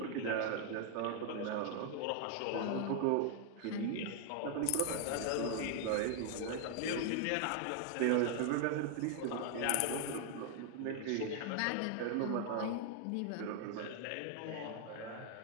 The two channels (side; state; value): both; different; correlation 0.00